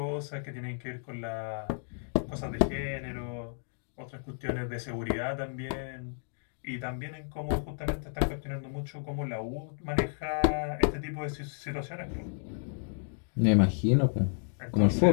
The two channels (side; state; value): right; silent; digital silence